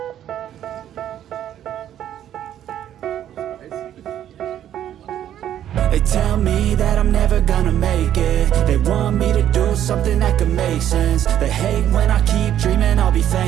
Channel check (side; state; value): left; quieter; 11.0 dB